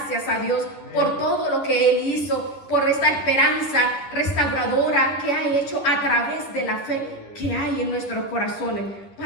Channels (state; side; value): late; right; 10 ms